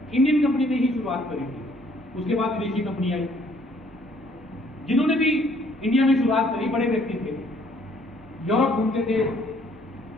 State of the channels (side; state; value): both; normal; correlation 0.63